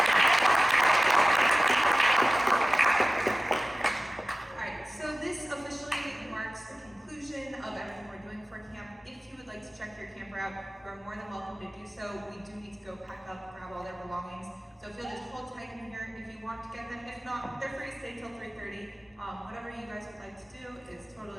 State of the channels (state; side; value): normal; both; correlation 0.97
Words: You are more than welcome to do so. We do need to go pack up, grab all their belongings. So if you'll just hold tight in here if you want to get them. If not, they're free to stay till 3:30. Whatever you guys would like to do is